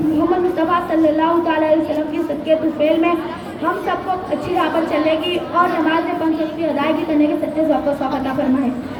مصطفیٰ صلی اللہ تعالیٰ علیہ وسلم کی صدقے طفیل میں ہم سب کو اچھی راہ پر چلنے کی اور نماز 5 وقت کی ادائیگی کرنے کے سچے ذوق و شوق عطا فرمائے.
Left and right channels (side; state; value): both; identical; correlation 1.00